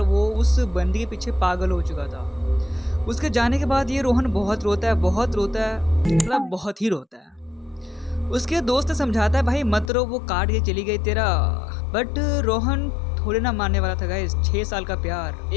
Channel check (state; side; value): drops out; right; at 9.9 s